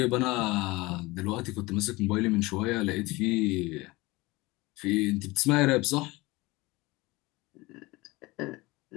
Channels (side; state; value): right; quieter; 21.9 dB